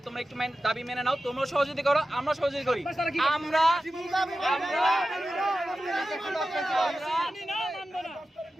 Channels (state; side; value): normal; both; correlation 0.93